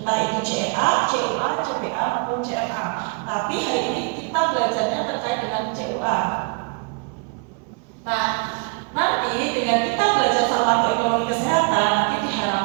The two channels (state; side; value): quieter; left; 34.5 dB